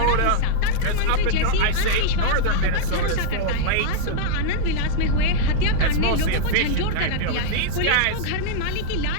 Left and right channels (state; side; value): different; both; correlation -0.01